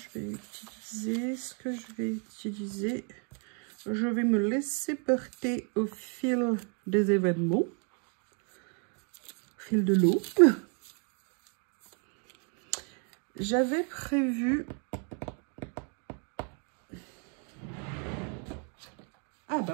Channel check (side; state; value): left; quieter; 39.4 dB